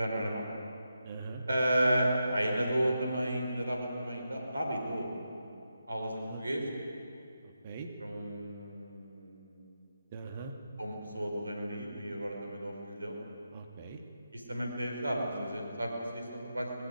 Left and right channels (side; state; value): both; inverted; correlation -0.87